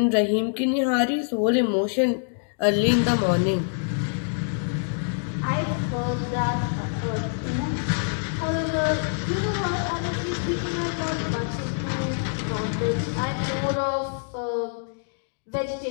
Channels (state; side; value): silent; right; digital silence